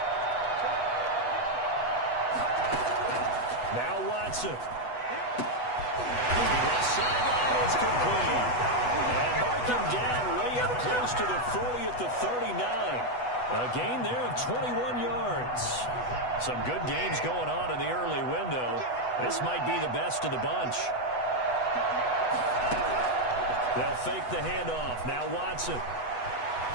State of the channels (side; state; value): right; late; 8.1 ms